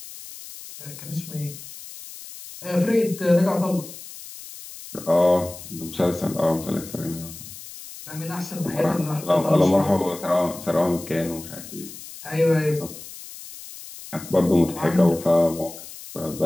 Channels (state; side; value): noise; left; hiss, 14 dB below the sound